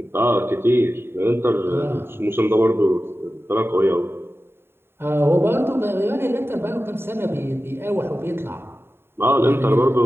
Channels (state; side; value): late; left; 0.11 ms